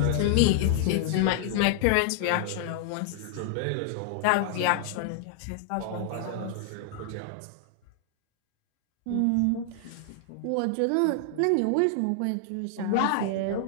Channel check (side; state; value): both; different; correlation 0.00